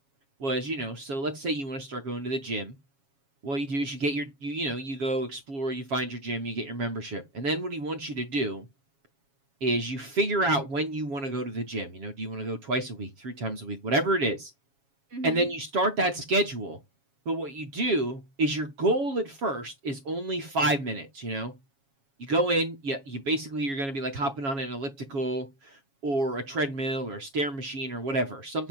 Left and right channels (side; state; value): left; late; 7.3 ms